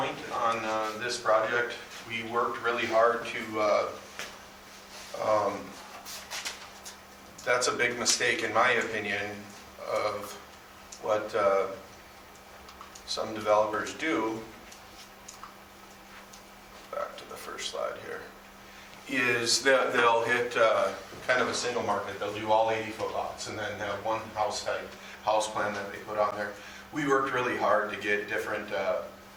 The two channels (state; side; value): identical; both; correlation 1.00